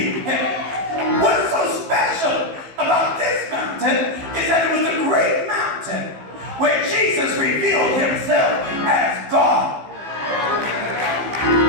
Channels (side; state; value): left; late; 15 ms